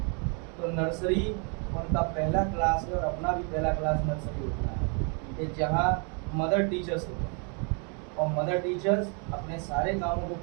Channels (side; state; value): left; quieter; 37.4 dB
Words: तो नर्सरी उनका पहला क्लास है और अपना भी पहला क्लास नर्सरी होता है कि जहाँ मदर टीचर्स होते हैं और मदर टीचर्स अपने सारे कामों को